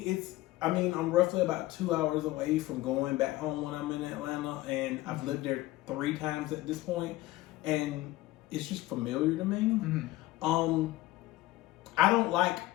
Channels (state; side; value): quieter; right; 17.3 dB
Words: I'm roughly about 2 hours away from going back home when I'm in Atlanta, and I've lived there 3 times at this point, and it's just familiar to me. I don't like